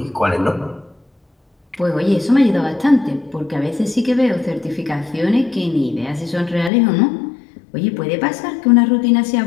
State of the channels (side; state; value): right; drops out; at 6.7 s